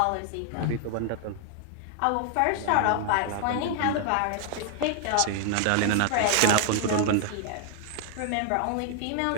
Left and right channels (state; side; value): different; both; correlation 0.00